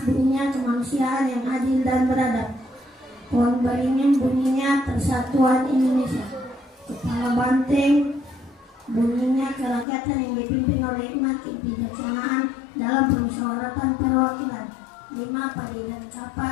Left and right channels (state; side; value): drops out; right; at 9.9 s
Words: bunyinya kemanusiaan yang adil dan beradab. Pohon beringin bunyinya Persatuan Indonesia. Kepala banteng bunyinya kerakyatan yang dipimpin oleh hikmat kebijaksanaan dalam permusyawaratan perwakilan. 5 padi dan